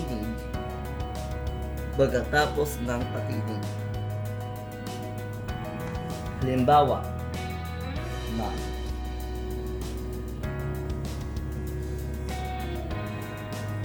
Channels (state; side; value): identical; both; correlation 1.00